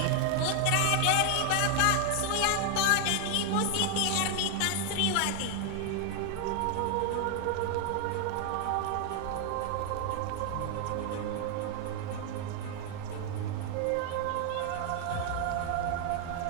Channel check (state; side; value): different; both; correlation 0.01